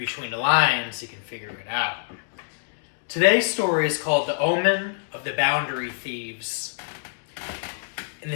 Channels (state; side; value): silent; right; digital silence